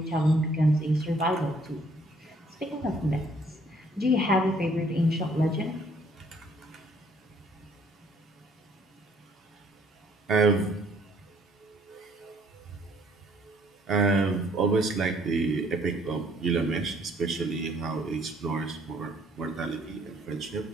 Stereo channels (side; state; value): both; normal; correlation 0.63